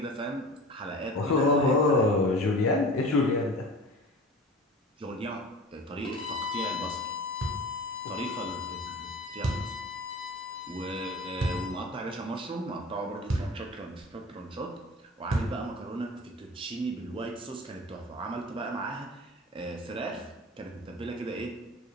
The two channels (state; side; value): normal; both; correlation 0.38